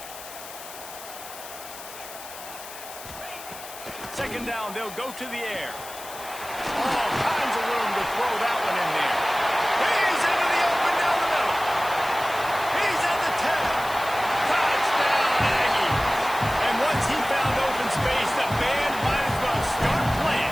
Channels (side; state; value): left; noise; hiss, 14 dB below the sound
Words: Second down, they'll go to the air. All kinds of room to throw that one in there. He's into the open down the middle. He's at the 10. Touchdown, Aggies. And once he found open space, the band might as well start